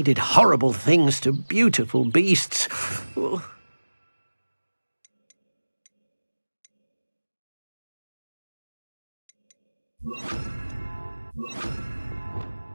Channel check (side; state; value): both; inverted; correlation -1.00